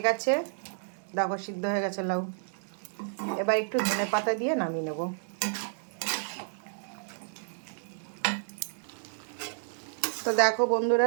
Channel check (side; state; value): left; silent; digital silence